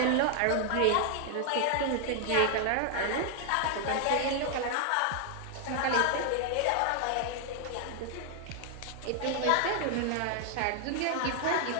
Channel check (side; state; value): both; different; correlation 0.00